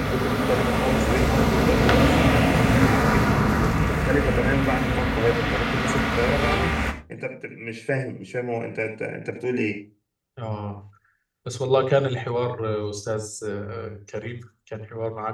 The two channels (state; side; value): identical; both; correlation 1.00